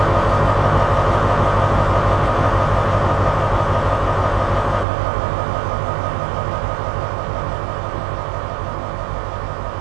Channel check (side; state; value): left; drops out; at 4.9 s